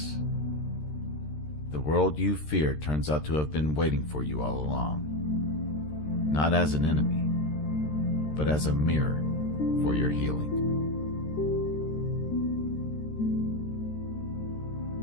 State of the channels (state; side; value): late; right; 13 ms